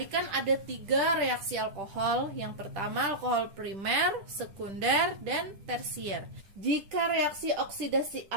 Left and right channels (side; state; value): left; late; 10 ms